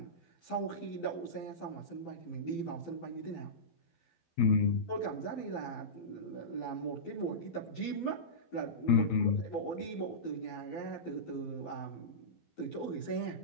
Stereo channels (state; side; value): late; right; 12 ms